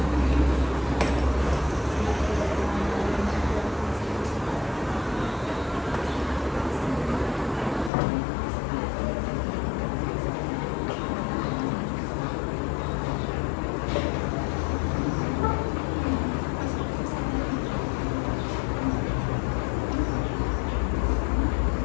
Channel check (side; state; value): right; drops out; at 7.9 s